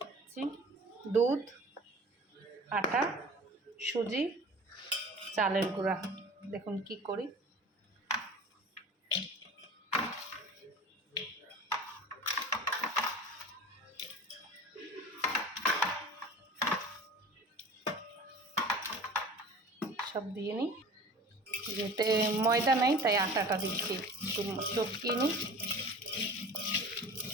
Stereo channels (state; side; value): normal; both; correlation 0.40